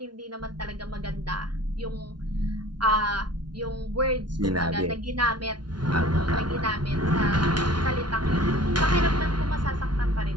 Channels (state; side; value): late; left; 0.70 ms